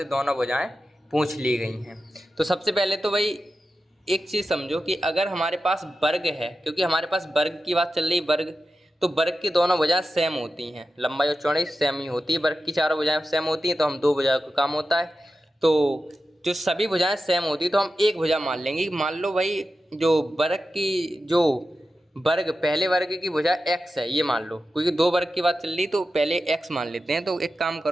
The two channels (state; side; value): normal; both; correlation 0.92